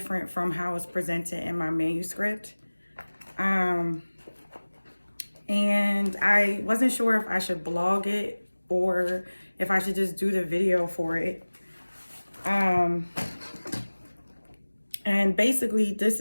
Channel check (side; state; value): both; inverted; correlation -1.00